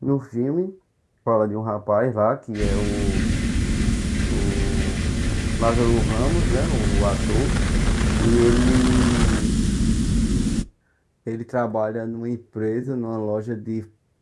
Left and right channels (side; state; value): both; identical; correlation 1.00